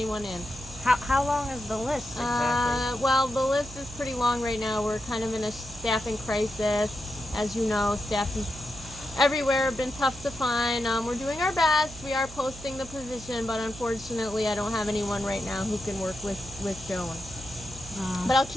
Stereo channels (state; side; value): noise; right; hum, 16 dB below the sound